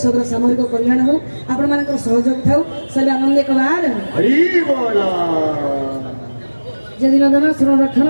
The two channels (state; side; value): inverted; both; correlation -1.00